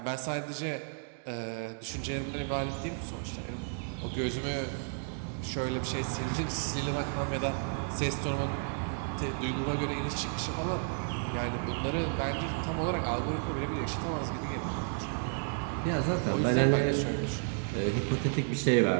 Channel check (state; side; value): silent; left; 56 dB below the other